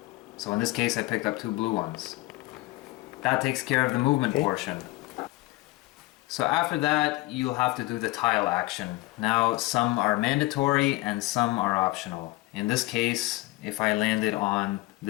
So in this case I picked up 2 blue ones. That takes care of the movement portion. So after that you'll have to do the tile action. Now some are mandatory and some are optional. In this case, if I landed on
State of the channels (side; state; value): right; quieter; 20.4 dB